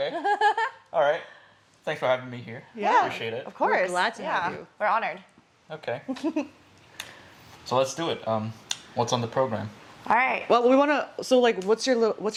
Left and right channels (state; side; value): identical; both; correlation 1.00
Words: All right. Thanks for having me here. Yeah. Appreciate it. Of course. We're glad to have you. We're honored. Okay. So let's do it. What's on the program? All right. Well, we want to. So, like, what's